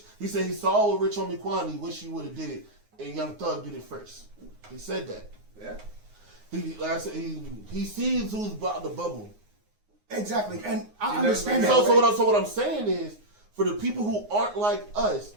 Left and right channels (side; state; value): left; late; 9.6 ms